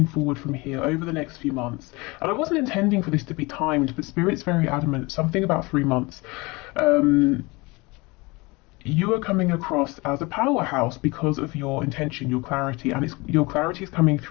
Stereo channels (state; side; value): quieter; right; 24.7 dB